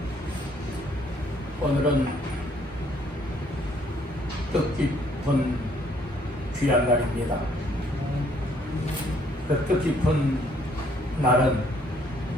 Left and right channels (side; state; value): both; normal; correlation 0.65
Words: 오늘은 뜻깊은 귀한 날입니다. 그 뜻깊은 날은